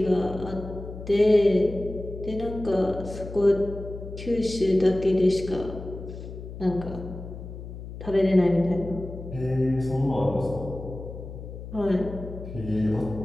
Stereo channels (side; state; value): left; noise; hum, 11 dB below the sound